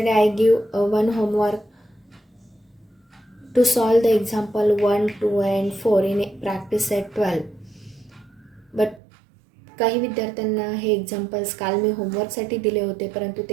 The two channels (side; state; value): left; drops out; at 9.0 s